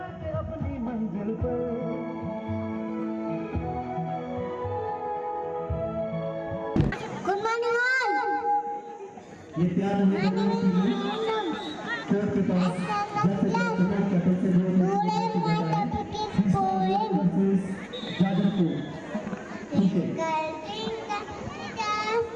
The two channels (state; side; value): identical; both; correlation 1.00